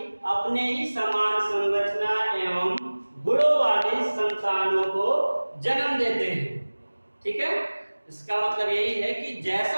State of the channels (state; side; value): inverted; both; correlation -1.00